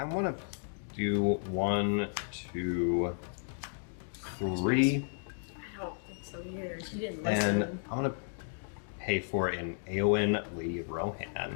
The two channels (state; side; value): silent; right; digital silence